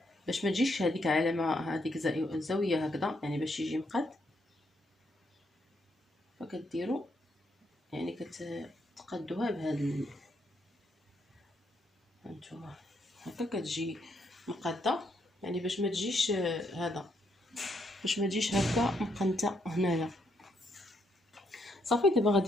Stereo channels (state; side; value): normal; both; correlation 0.75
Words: باش ما تجيش هذيك علامه هذيك الزاويه هكذا، يعني باش يجي مقاد. فكديروا يعني كتقادوها بهذا هانتوما هكا كتجي مقاده، يعني باش ما تجيش هذا، باش ما تجيش هكا مقنته هنايا. صافي دابا